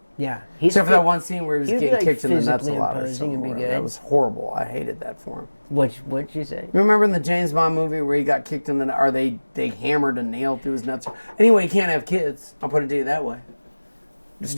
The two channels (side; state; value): both; inverted; correlation -1.00